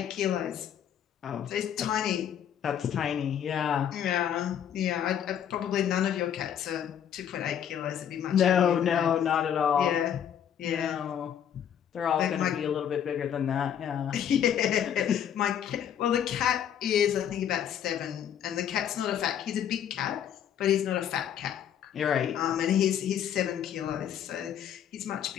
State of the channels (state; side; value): quieter; right; 9.3 dB